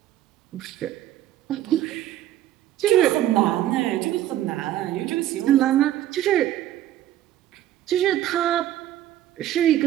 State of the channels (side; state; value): left; quieter; 12.9 dB